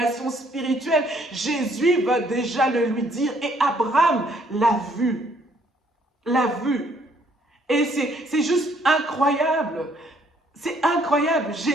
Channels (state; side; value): normal; both; correlation 0.66